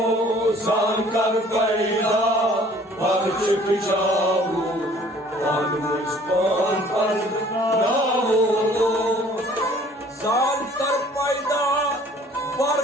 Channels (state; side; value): normal; both; correlation 0.54